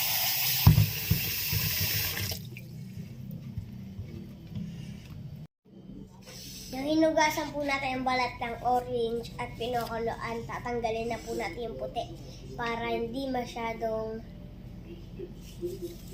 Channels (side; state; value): both; identical; correlation 1.00